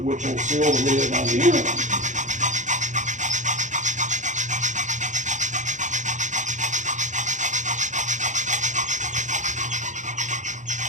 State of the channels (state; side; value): late; left; 0.35 ms